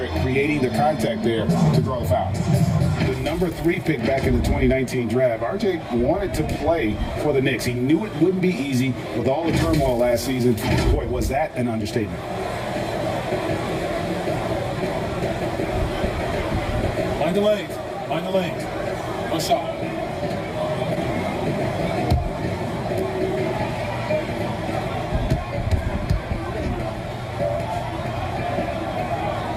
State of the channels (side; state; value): both; identical; correlation 1.00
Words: creating the contact there to draw the foul. The number 3 pick back in the 2019 draft, RJ wanted to play for the Knicks. He knew it wouldn't be easy with all the turmoil last season. Boy, was that an understatement. Mind the lane. Mind the lane. No shot.